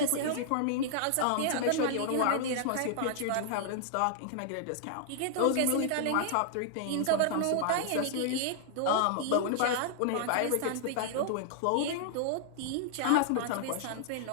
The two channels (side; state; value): both; different; correlation -0.01